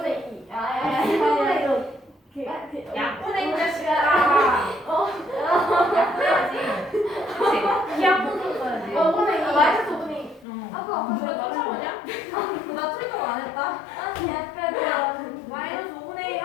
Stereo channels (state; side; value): drops out; right; at 10.5 s